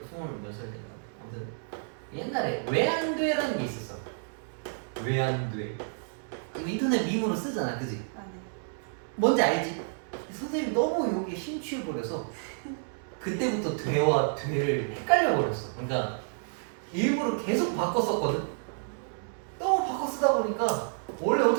몇 살 때인가. 아무튼 옛날에 왜 안 돼라는 게 있었어. 왜 안 돼? 인터넷 밈으로 쓰잖아, 그지? 아 네. 뭔지 알지? 선생님 너무 여기에 심취해버려서 그때부터 돼와 돼를 헷갈려버렸어. 그러니까 일부러 계속 바꿨었거든. 너무 바꿔 쓰다 보니까 원래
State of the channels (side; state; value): left; silent; digital silence